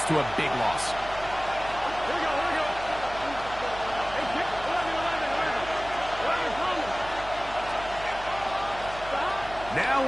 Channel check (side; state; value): right; noise; hum, 14 dB below the sound